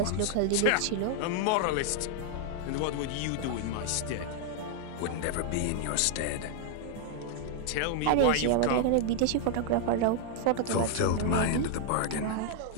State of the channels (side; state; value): both; different; correlation 0.00